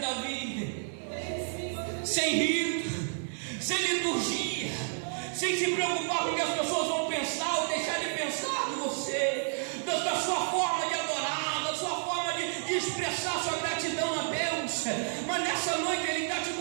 Davi, sem rito, sem liturgia, sem se preocupar com o que as pessoas vão pensar ou deixar de pensar de você, da sua forma de adorar, da sua forma de expressar sua gratidão a Deus. Mas nessa noite Ele está te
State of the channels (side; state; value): left; silent; 57 dB below the other